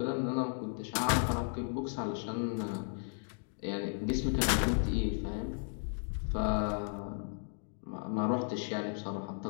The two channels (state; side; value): silent; right; 55 dB below the other